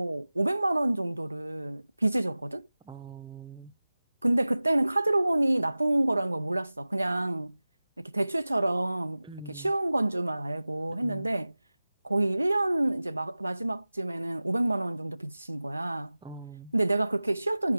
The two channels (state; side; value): inverted; both; correlation -0.98